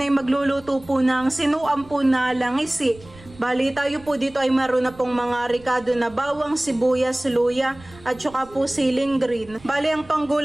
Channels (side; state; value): right; noise; rumble, 22 dB below the sound